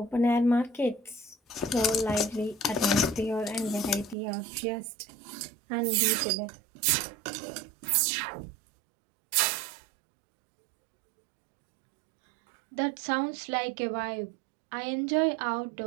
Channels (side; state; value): left; drops out; at 4.2 s